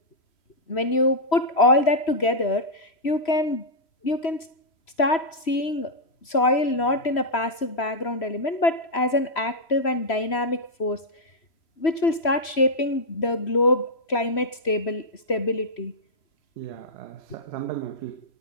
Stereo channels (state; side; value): late; right; 3.1 ms